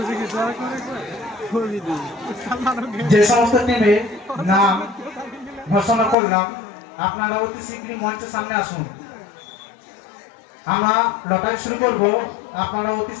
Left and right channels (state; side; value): drops out; right; at 6.2 s